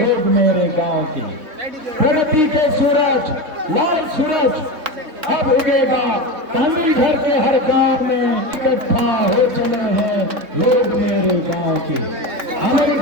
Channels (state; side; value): late; left; 3.6 ms